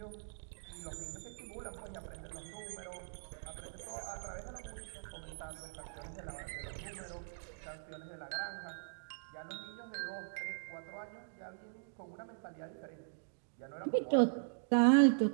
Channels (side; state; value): left; silent; digital silence